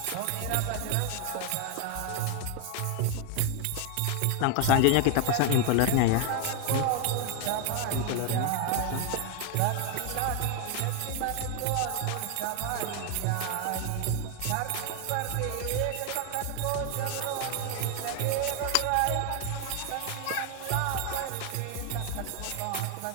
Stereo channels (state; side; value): different; both; correlation 0.00